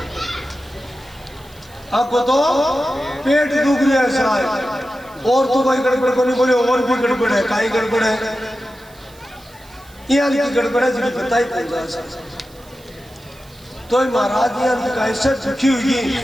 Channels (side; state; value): right; noise; hiss, 26 dB below the sound